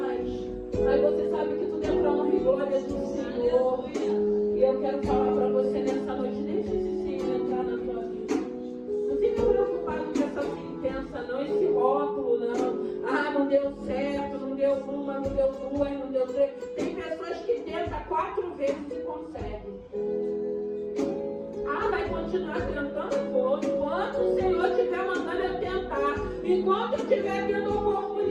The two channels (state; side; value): identical; both; correlation 1.00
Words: aí você sabe que tudo é para honra e glória do Senhor. E eu quero falar para você nessa noite, deixa esse Senhor entrar na tua vida. Não fica preocupado com essa sentença, não, esse rótulo, não. Não deu certo, não deu uma, não deu duas, não deu três. Tem pessoas que tentam 4 vezes e conseguem. Vai continuar tentando? Vou. Enquanto o Senhor estiver mandando eu tentar, enquanto eu estiver tendo